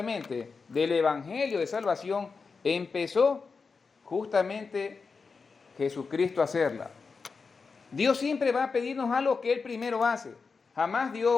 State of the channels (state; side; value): quieter; right; 4.8 dB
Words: del Evangelio de salvación empezó justamente Jesucristo a hacerla. Dios siempre va a pedirnos algo que Él primero hace. Jamás